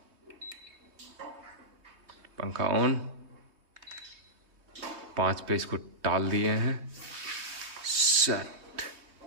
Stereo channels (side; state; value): left; late; 3.2 ms